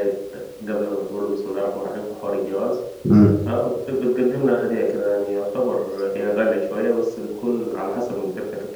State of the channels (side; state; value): both; identical; correlation 1.00